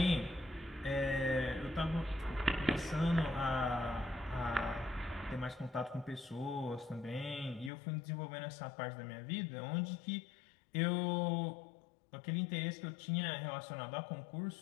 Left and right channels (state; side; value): drops out; right; at 7.7 s